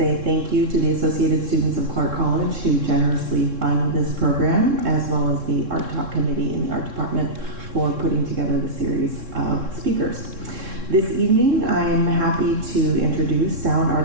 thank you to the Associated Students of Clark College who generously fund this program, as well as the Art Talk Committee in the Art Department for putting together the series of speakers. This evening, I'm happy to introduce sound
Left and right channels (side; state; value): left; late; 3.7 ms